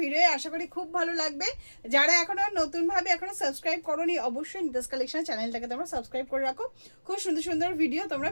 ভিডিও আশা করি খুব ভালো লাগবে। যারা এখনো নতুনভাবে এখনো সাবস্ক্রাইব করোনি, অবশ্যই নিতাস কালেকশন চ্যানেলটাকে তোমরা সাবস্ক্রাইব করে রাখো। খুব সুন্দর সুন্দর ভিডিও তোমরা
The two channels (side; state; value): both; inverted; correlation -1.00